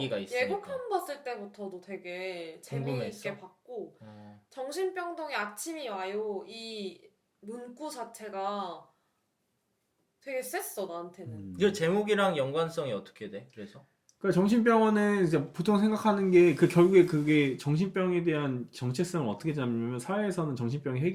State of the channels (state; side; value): identical; both; correlation 1.00